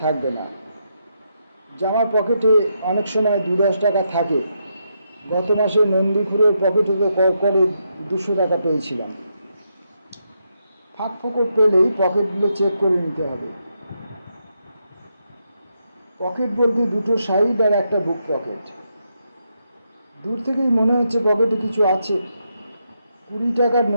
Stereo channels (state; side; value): inverted; both; correlation -0.81